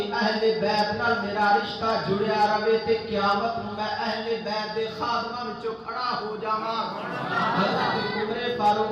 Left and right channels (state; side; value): identical; both; correlation 1.00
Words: اہل بیت نال میرا رشتہ جڑیا رہے تے قیامت نوں میں اہل بیت دے خادماں وچوں کھڑا ہو جاواں۔ حضرت عمر